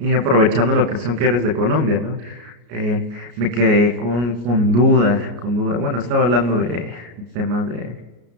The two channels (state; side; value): late; left; 34 ms